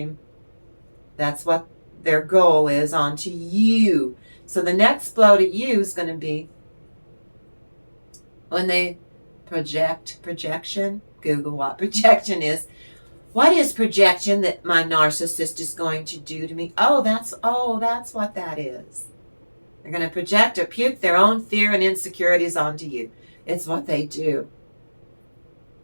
That's what their goal is onto you. So the next blow to you is going to be when they projection. Google what projection is. What is projection that my narcissist is going to do to me? Oh, that's what that is. They're going to project or puke their own fear and insecurities onto you. It's what they do.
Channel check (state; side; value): inverted; both; correlation -1.00